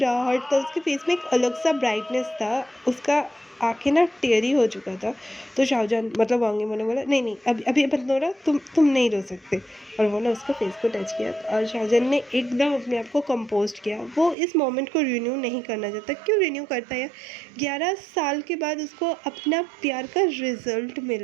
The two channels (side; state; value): left; drops out; at 14.4 s